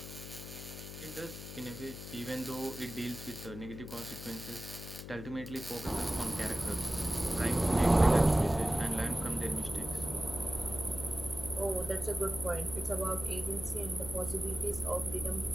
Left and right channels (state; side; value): noise; left; hum, 10 dB below the sound